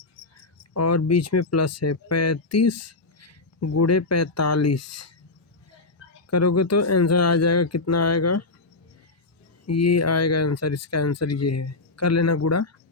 और बीच में प्लस है 35 गुणे 45 करोगे तो आंसर आ जाएगा। कितना आएगा, ये आएगा आंसर, इसका आंसर ये है। कर लेना गुणा,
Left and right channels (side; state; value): right; quieter; 3.4 dB